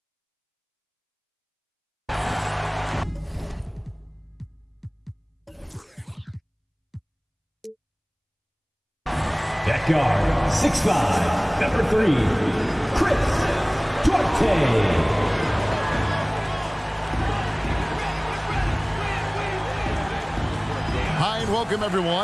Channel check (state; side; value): identical; both; correlation 1.00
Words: At guard, 6'5", number 3, Chris Duarte. Hi and welcome